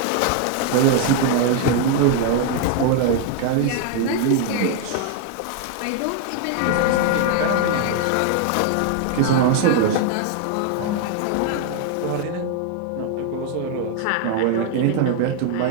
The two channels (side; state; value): both; different; correlation 0.00